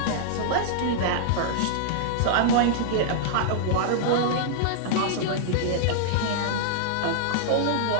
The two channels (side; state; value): both; different; correlation -0.02